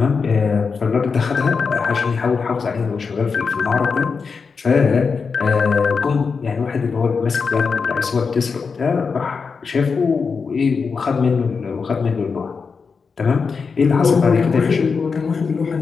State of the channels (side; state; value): right; quieter; 5.2 dB